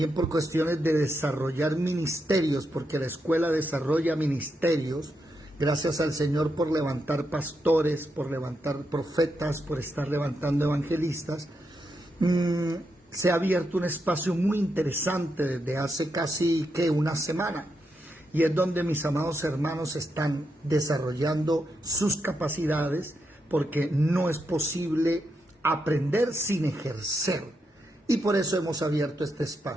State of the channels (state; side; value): normal; both; correlation 0.83